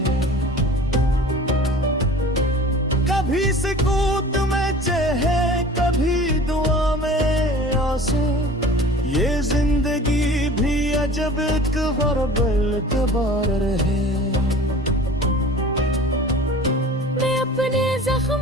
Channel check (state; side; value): normal; both; correlation 0.43